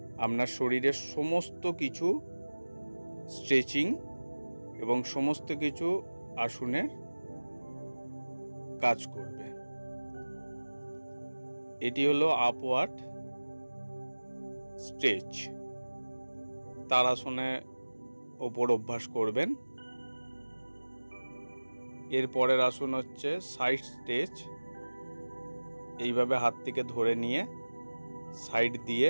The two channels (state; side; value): inverted; both; correlation -1.00